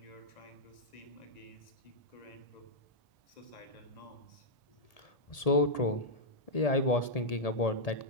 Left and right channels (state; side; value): late; right; 1.8 ms